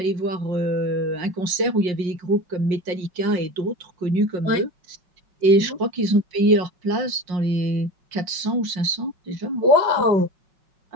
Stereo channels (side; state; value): left; late; 5.6 ms